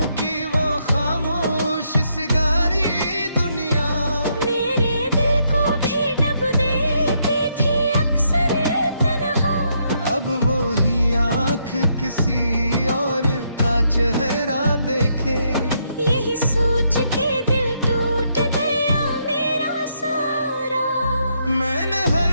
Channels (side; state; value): both; inverted; correlation -0.75